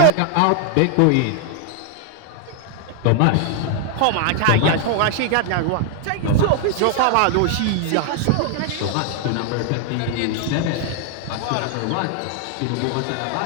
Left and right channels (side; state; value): both; different; correlation 0.00